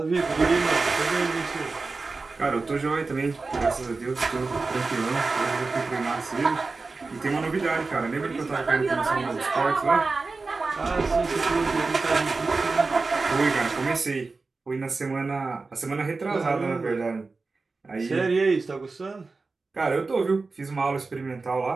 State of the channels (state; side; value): quieter; left; 3.9 dB